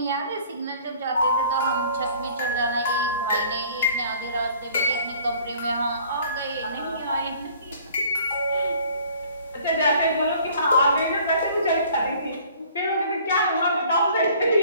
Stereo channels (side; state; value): both; inverted; correlation -0.53